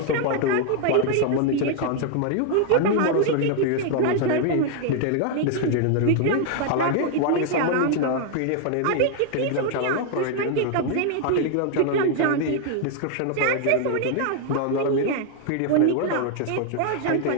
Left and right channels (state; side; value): different; both; correlation 0.00